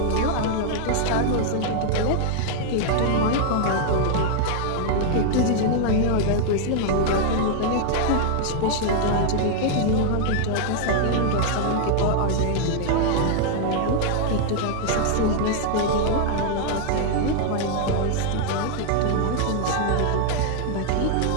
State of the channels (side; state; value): both; different; correlation 0.00